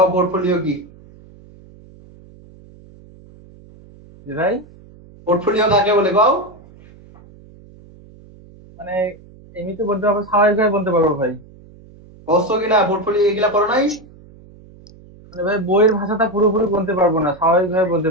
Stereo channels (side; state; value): right; noise; hum, 23 dB below the sound